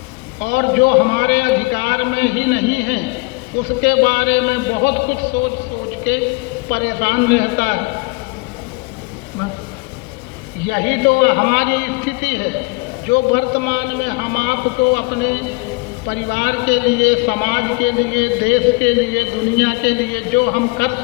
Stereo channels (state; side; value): quieter; right; 27.6 dB